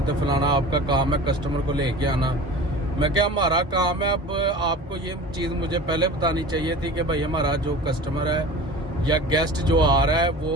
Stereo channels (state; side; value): normal; both; correlation 0.37